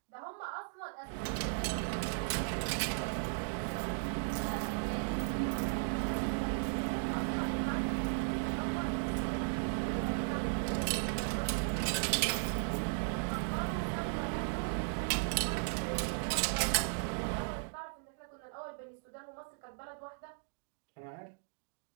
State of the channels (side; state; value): left; silent; digital silence